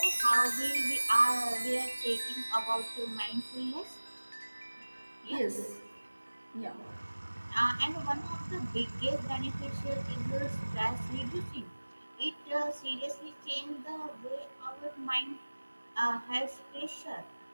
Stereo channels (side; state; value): both; inverted; correlation -1.00